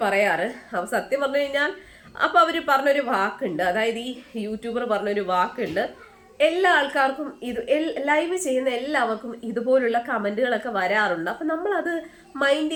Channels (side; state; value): both; identical; correlation 1.00